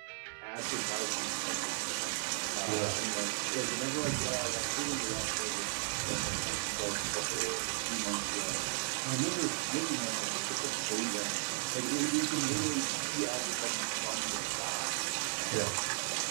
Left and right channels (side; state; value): left; silent; 54 dB below the other